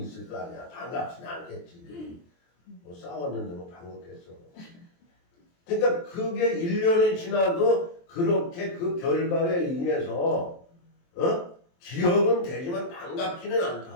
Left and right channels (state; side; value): late; right; 23 ms